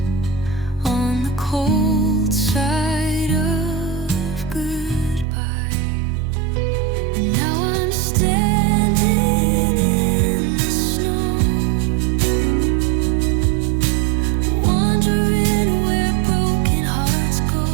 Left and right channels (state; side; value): drops out; left; at 5.2 s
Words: on the cold side of goodbye. And now I'm standing in the snow, wondering where broken hearts go.